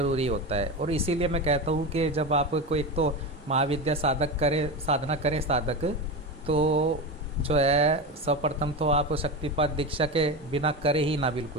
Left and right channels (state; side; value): normal; both; correlation 0.21